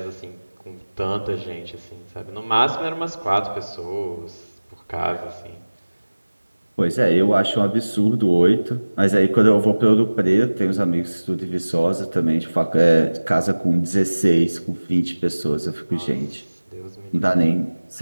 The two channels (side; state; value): both; inverted; correlation -1.00